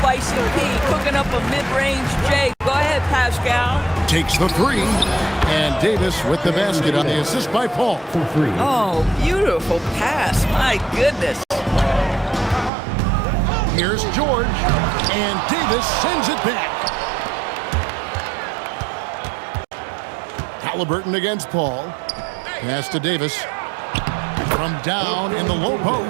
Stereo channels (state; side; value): drops out; left; at 12.7 s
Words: P, cooking up a mid-range J. Go ahead, Pascal. Takes the three. And Davis with the basket on the assist by Paul. Oh, beautiful pass. My goodness. Here's George. And Davis sends it back. Halliburton against Paul. Pass to Davis. From down in the low